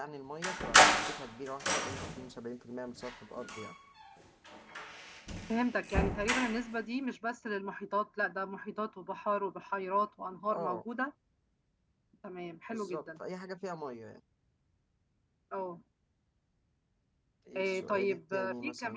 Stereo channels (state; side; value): identical; both; correlation 1.00